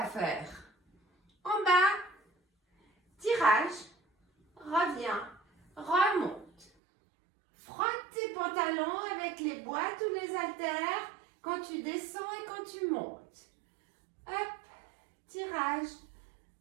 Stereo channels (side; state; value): left; drops out; at 6.7 s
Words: faire en bas, tirage, reviens, remonte. Frotte tes pantalons avec les boîtes ou les haltères quand tu descends et quand tu montes. Hop, tirage